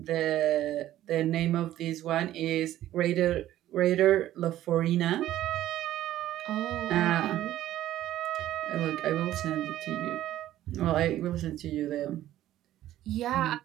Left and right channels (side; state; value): left; quieter; 13.5 dB